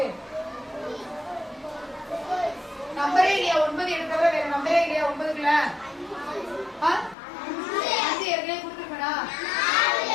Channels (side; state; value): right; drops out; at 7.2 s